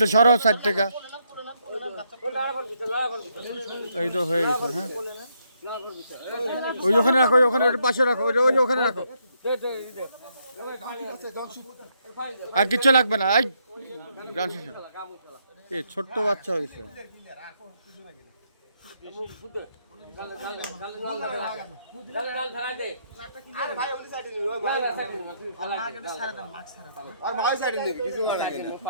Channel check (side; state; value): both; inverted; correlation -0.74